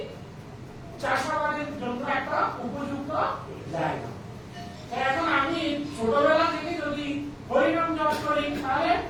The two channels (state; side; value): identical; both; correlation 1.00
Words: চাষাবাদের জন্য একটা উপযুক্ত জায়গা। এখন আমি ছোটবেলা থেকে যদি হরিনাম জপ করি তাহলে